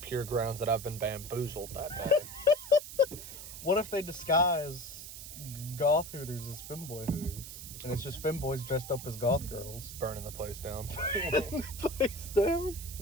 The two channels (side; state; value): right; noise; hiss, 11 dB below the sound